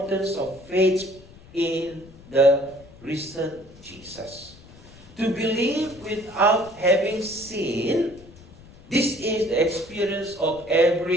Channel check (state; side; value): noise; left; rumble, 22 dB below the sound